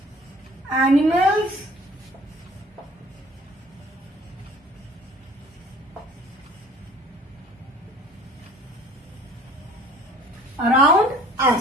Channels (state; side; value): normal; both; correlation 0.52